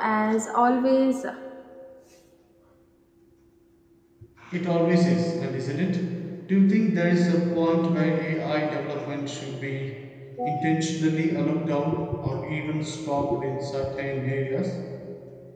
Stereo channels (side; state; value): both; identical; correlation 1.00